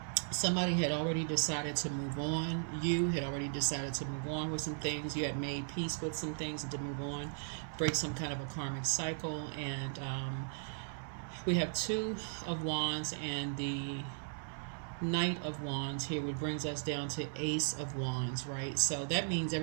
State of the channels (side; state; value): left; silent; 53 dB below the other